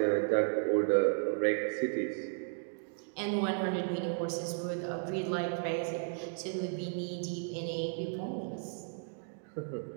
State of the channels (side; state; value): left; silent; digital silence